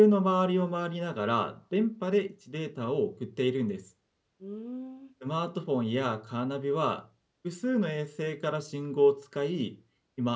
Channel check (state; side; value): identical; both; correlation 1.00